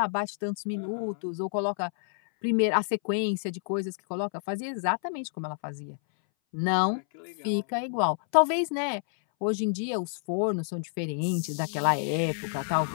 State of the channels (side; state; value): right; silent; 59 dB below the other